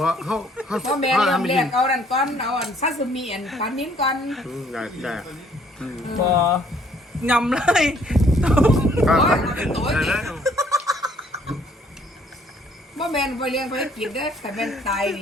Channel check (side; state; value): both; normal; correlation 0.62